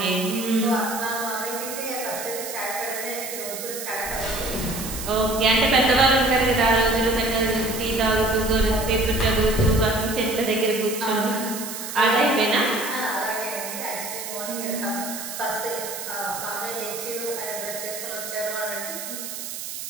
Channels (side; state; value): right; noise; hiss, 8 dB below the sound